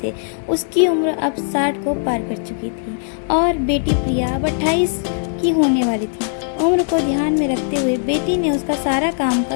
थे। उसकी उम्र अब 60 को पार कर चुकी थी और बेटी प्रिया अब 28 की होने वाली थी। उम्र को ध्यान में रखते हुए बेटी ने उसका सारा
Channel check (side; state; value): right; silent; digital silence